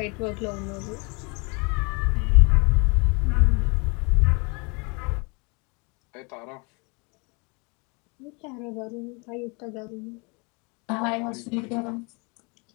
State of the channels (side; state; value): right; quieter; 31.1 dB